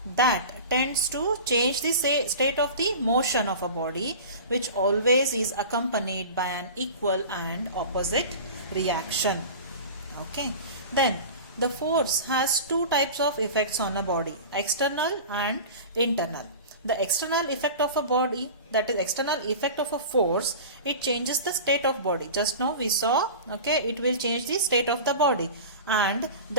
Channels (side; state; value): both; inverted; correlation -0.34